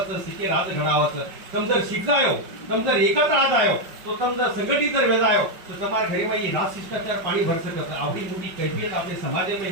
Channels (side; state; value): left; late; 5.3 ms